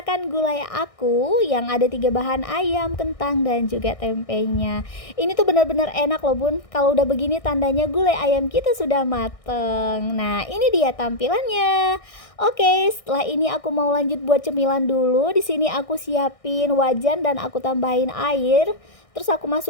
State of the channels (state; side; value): late; right; 1.6 ms